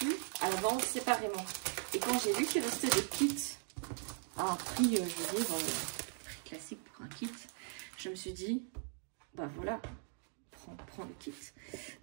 à la vente séparément. Et quand j'ai vu qu'il restait des kits à un prix, je veux dire, prix classique pour un kit, je me suis dit, bah voilà, prends le kit.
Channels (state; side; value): silent; left; 52 dB below the other